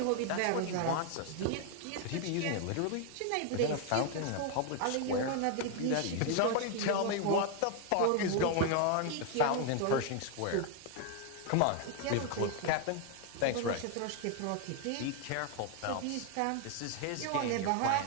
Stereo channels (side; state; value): both; different; correlation 0.00